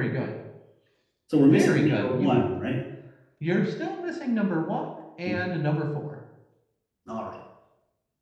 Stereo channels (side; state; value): both; identical; correlation 1.00